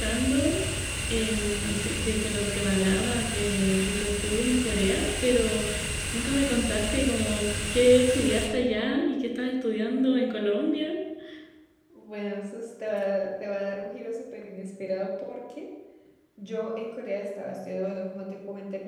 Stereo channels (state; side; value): identical; both; correlation 1.00